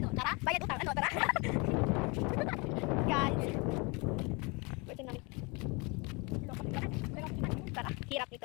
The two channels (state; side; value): quieter; right; 28.9 dB